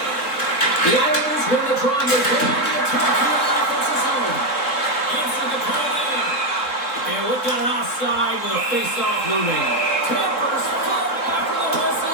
The Islanders win the draw and they go on the attack here in the offensive zone. Answer the call in. And we've got an offside with a face-off looming. Tampers fall after the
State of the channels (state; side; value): late; right; 3.7 ms